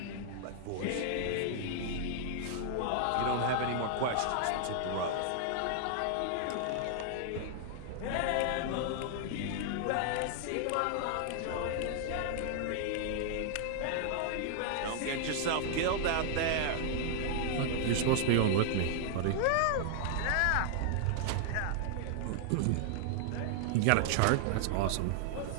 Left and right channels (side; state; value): both; different; correlation -0.01